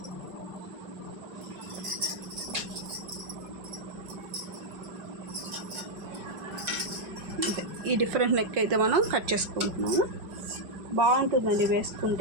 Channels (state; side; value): late; left; 5.5 ms